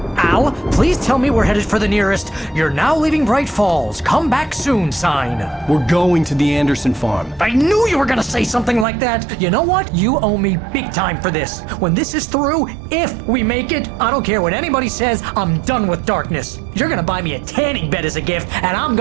Al, please tell me we're headed for the nearest "You're now leaving Bright Falls. Come back soon" sign. We're going to the Anderson farm. I knew you were gonna say something like that. You know what? You owe me big time for this. When this is through, if we make it, I don't care what anybody says, I'm done with darkness. You're gonna buy me a tanning bed as a gift, and I'm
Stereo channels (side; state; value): left; drops out; at 8.8 s